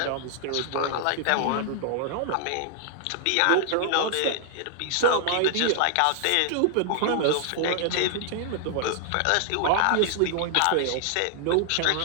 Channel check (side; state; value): both; different; correlation -0.01